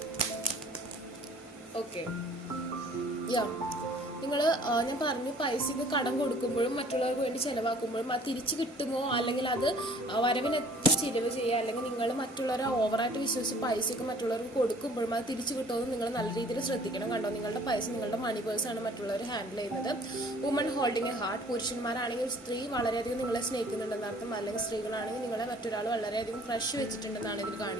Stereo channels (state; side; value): normal; both; correlation 0.53